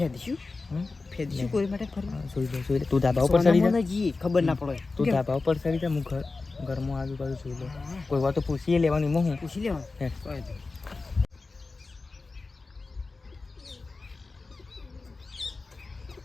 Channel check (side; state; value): right; quieter; 3.8 dB